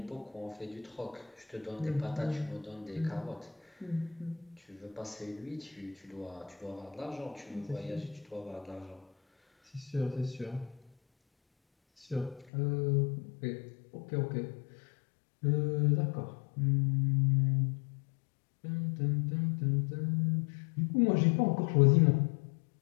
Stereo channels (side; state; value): right; drops out; at 12.5 s